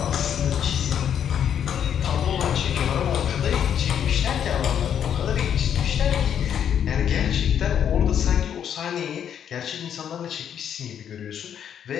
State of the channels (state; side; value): quieter; right; 8.9 dB